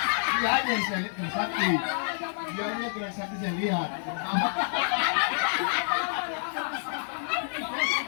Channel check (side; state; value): right; silent; digital silence